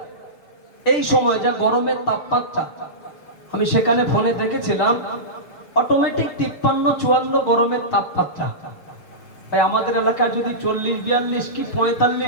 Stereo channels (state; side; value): late; right; 6.9 ms